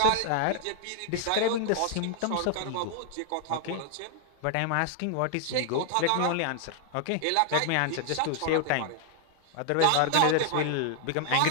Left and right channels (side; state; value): both; different; correlation 0.00